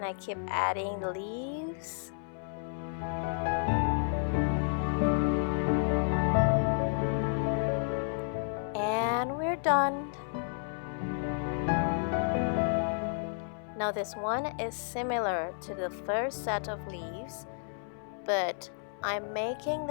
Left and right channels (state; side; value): silent; right; 57 dB below the other